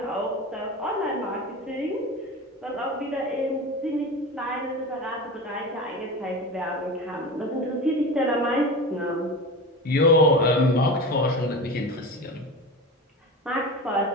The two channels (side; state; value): both; normal; correlation 0.28